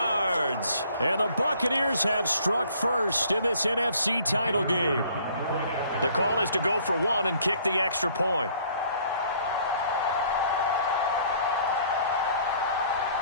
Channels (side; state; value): both; inverted; correlation -0.58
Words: And the Buccaneers have struck first in this NFC title game. The call is to go for one and kick the extra point.